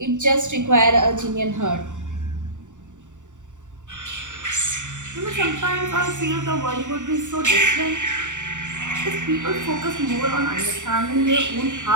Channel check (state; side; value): late; left; 0.86 ms